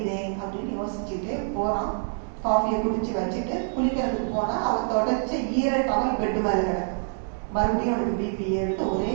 அப்படின்னு யோசிச்சுட்டு போறான். காஃபியை குடிச்சு வச்சுட்டு குளிக்கிறதுக்கு போனா அவன் தொடச்ச ஈர டவல் பெட்டு மேல கிடக்கு. மறுபடியும் அவனுக்கு பிபி எடுத்து ஒரே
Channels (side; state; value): left; silent; digital silence